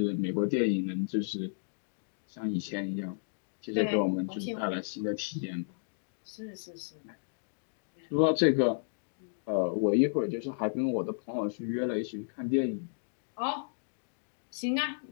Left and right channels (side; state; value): right; silent; digital silence